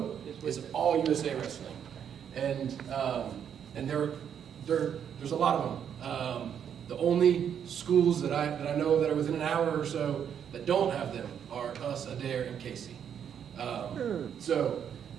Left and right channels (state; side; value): quieter; left; 8.5 dB